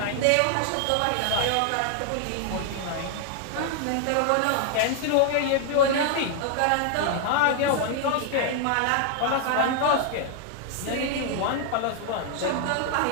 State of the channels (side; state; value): both; different; correlation 0.00